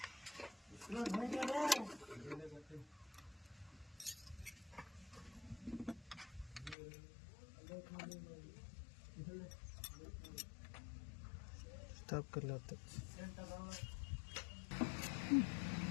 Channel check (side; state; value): right; drops out; at 6.8 s